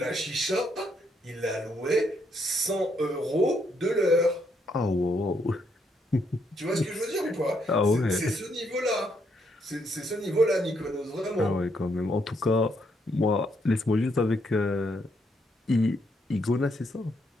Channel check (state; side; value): normal; both; correlation 0.75